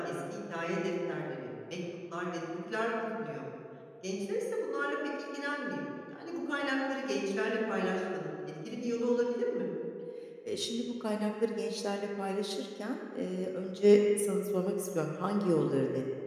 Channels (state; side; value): identical; both; correlation 1.00